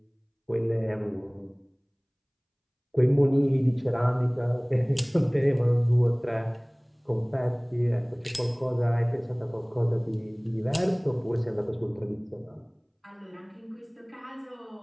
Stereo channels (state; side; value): identical; both; correlation 1.00